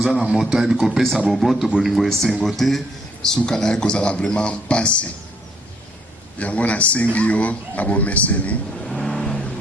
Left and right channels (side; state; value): both; normal; correlation 0.67